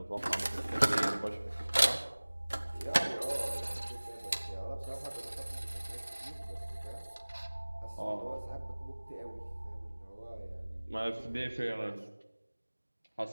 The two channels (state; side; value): inverted; both; correlation -1.00